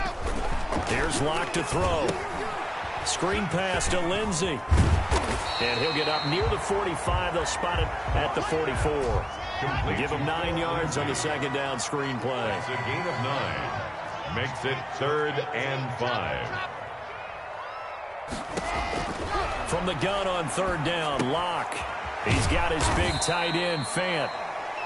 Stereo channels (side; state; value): both; identical; correlation 1.00